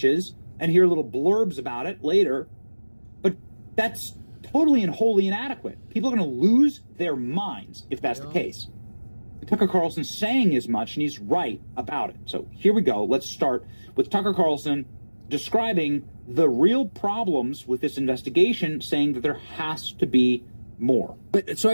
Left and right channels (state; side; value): inverted; both; correlation -1.00